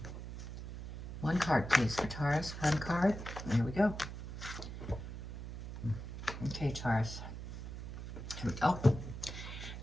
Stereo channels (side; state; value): right; noise; hum, 8 dB below the sound